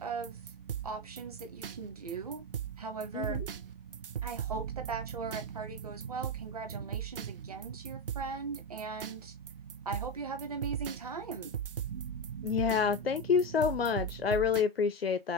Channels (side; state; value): both; normal; correlation 0.14